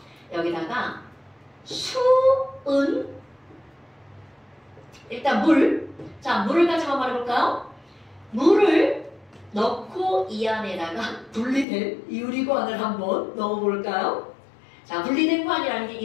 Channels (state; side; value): drops out; right; at 11.7 s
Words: 여기다가 수은 일단 물. 자, 물을 가지고 말해볼까요? 물을 넣고 이 안에다가 분리된 유리관을 한번 넣어볼까요? 자, 분리된 관이라는 게